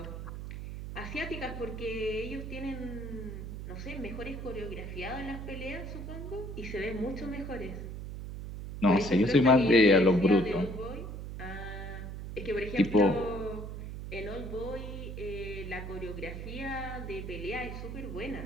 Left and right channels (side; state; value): right; noise; hum, 8 dB below the sound